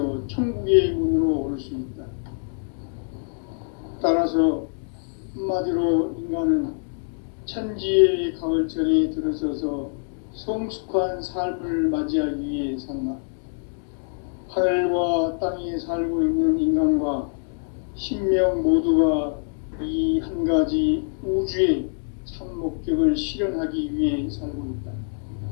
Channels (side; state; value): right; silent; digital silence